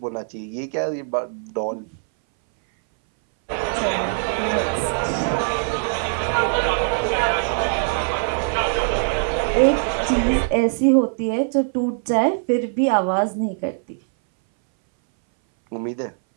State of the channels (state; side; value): silent; left; 62 dB below the other